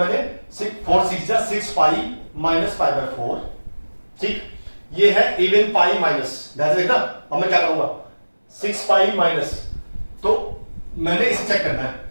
4 6 जा 6 पाई माइनस पाई बाय 4। ठीक, ये है इवन पाई माइनस, ध्यान से देखना। अब मैं क्या करूंगा, 6 पाई माइनस, तो मैंने इसे चेक करना है।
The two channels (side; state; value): both; inverted; correlation -1.00